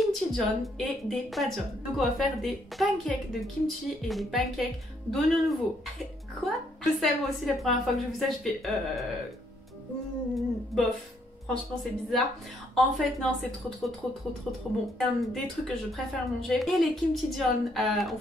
et des pajeon. Donc on va faire des pancakes de kimchi et des pancakes d'oignons nouveaux. Quoi? Je sais, moi aussi la première fois que j'ai vu ça, je fais bof. Franchement c'est bizarre. En fait non, c'est trop bon. C'est un des trucs que je préfère manger. Et les kimchijeon ont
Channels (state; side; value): normal; both; correlation 0.71